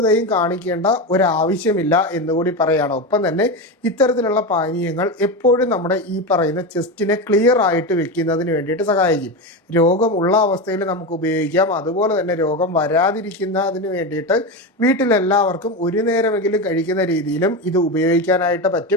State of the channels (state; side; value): normal; both; correlation 0.17